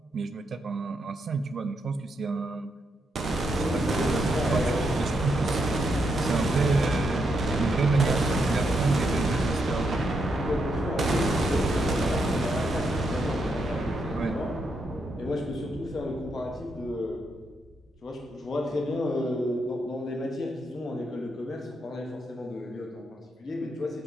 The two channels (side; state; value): both; normal; correlation 0.81